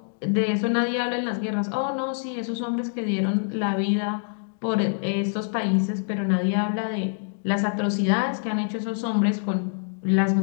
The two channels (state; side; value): silent; right; digital silence